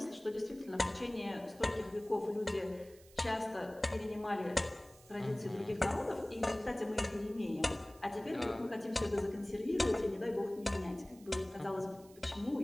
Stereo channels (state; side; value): noise; right; hiss, 24 dB below the sound